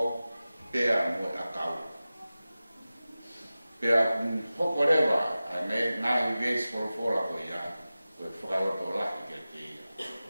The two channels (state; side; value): inverted; both; correlation -0.96